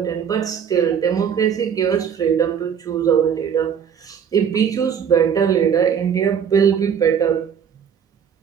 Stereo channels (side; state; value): left; quieter; 7.7 dB